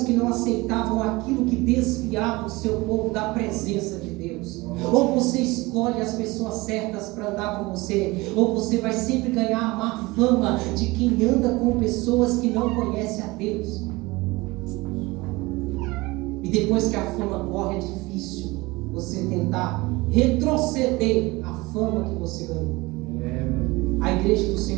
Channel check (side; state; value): left; quieter; 22.1 dB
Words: que não aceitavam aquilo que desviava o seu povo da presença de Deus. Ou você escolhe as pessoas certas para andar com você, ou você vai sempre ganhar a má fama de quem anda com pessoas que não conhecem a Deus. E depois que a fama corre, é difícil você tentar retroceder a fama que você ganhou. A igreja do